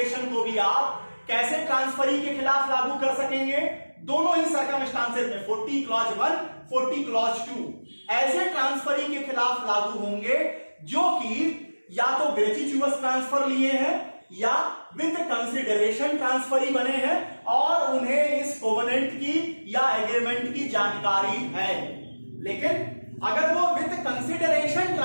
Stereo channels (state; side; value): inverted; both; correlation -1.00